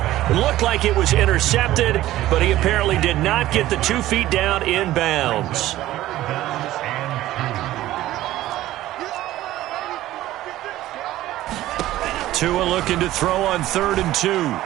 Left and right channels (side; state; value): left; quieter; 15.0 dB